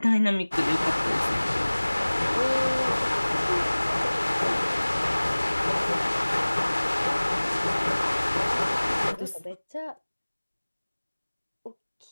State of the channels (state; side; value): inverted; both; correlation -1.00